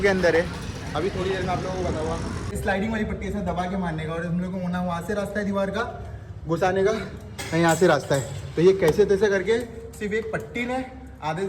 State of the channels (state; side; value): identical; both; correlation 1.00